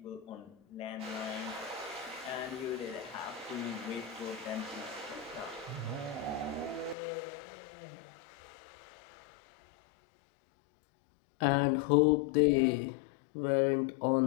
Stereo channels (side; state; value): right; drops out; at 7.0 s